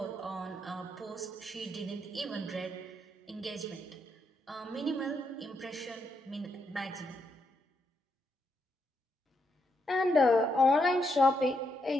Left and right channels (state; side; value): normal; both; correlation 0.79